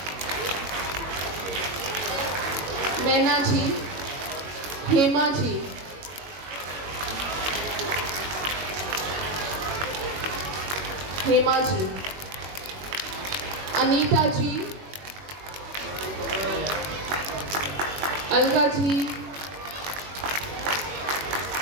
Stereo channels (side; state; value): left; late; 21 ms